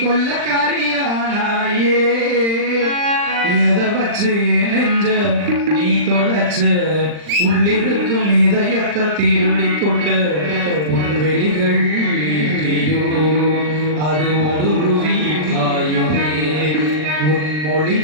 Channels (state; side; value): late; left; 39 ms